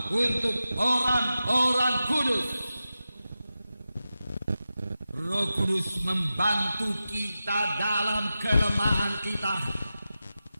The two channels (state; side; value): inverted; both; correlation -0.92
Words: untuk orang-orang kudus. Roh Kudus membantu kita dalam kelemahan kita.